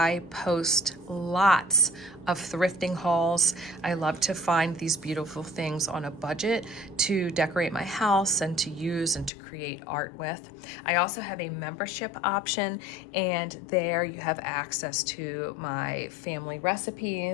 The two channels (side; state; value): right; drops out; at 9.3 s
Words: post lots of thrifting hauls. I love to find these beautiful things on a budget to decorate my house and to use and to create art with. I also have a membership option, and there you have access to my family